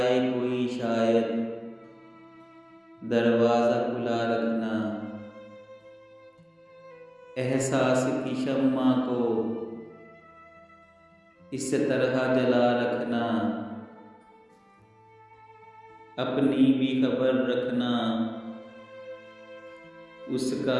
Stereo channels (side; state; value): both; identical; correlation 1.00